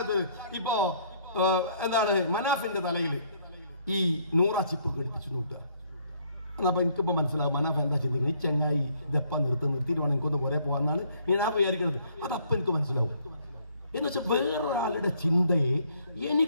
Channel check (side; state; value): both; inverted; correlation -0.65